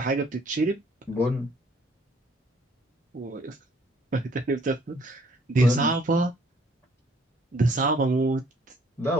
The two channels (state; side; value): normal; both; correlation 0.61